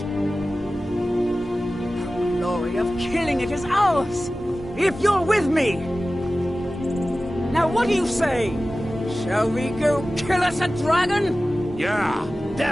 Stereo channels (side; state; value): both; normal; correlation 0.96